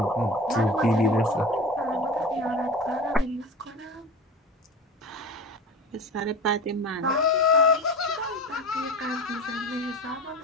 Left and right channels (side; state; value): both; normal; correlation 0.32